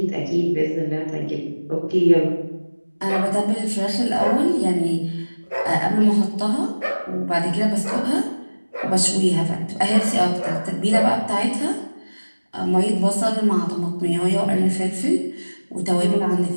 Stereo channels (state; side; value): inverted; both; correlation -1.00